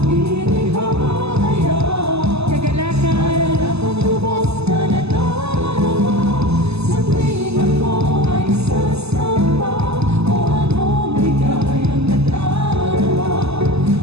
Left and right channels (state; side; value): late; left; 0.79 ms